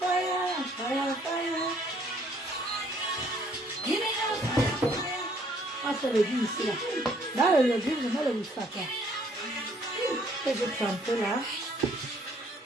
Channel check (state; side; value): normal; both; correlation 0.63